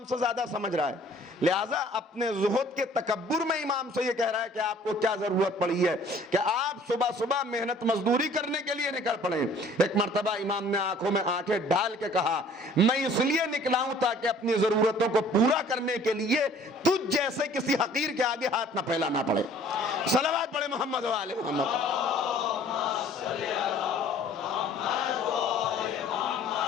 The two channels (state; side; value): normal; both; correlation 0.53